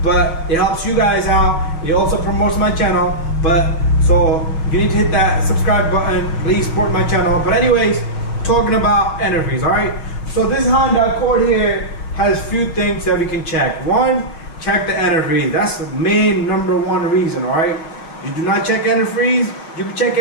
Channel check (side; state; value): right; late; 6.1 ms